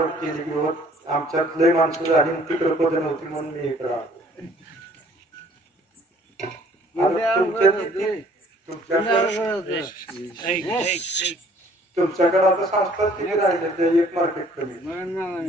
केले की आमच्यात लय माणसं झाली, तिकडे पद नव्हती म्हणून मी इकडे आलो. तुमच्याकडे आता संस्था किती राहिले? ते एक मार्केट कमी,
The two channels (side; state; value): both; normal; correlation 0.57